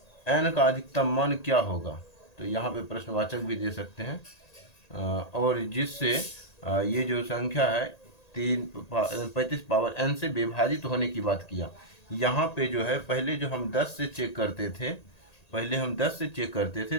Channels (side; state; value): right; late; 1.9 ms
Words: n का अधिकतम मान क्या होगा। तो यहाँ पे प्रश्नवाचक भी दे सकते हैं, और जिससे ये जो संख्या है 35 पावर n से विभाजित होने की बात किया। यहाँ पे जो है पहले जो हम 10 से चेक करते थे,